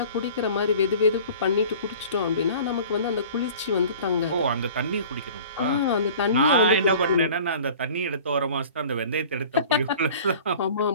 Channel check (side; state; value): both; inverted; correlation -0.45